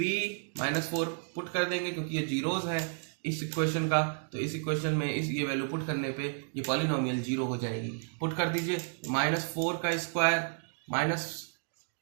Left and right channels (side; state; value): left; silent; digital silence